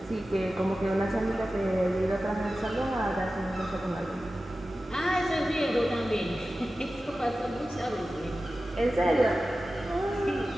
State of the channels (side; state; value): both; normal; correlation 0.94